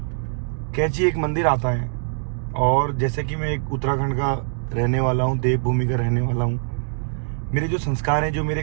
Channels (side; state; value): left; silent; digital silence